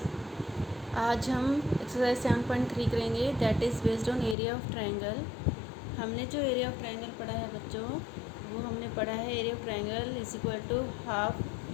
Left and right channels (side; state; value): right; drops out; at 4.4 s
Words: आज हम exercise 7.3 करेंगे, that is based on area of triangle. हमने जो एरिया ऑफ ट्रायंगल पढ़ा है बच्चों, वो हमने पढ़ा है area of triangle is equal to half